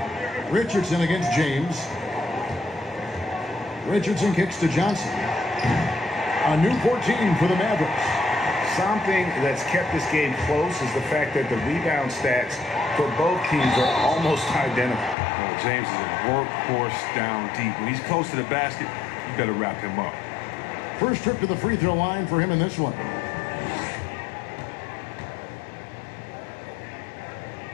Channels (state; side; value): drops out; right; at 15.2 s